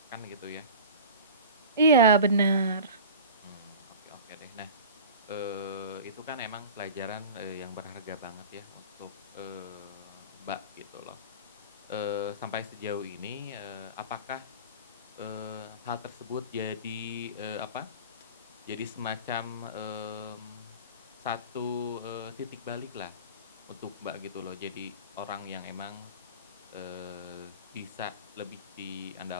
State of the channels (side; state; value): both; inverted; correlation -0.35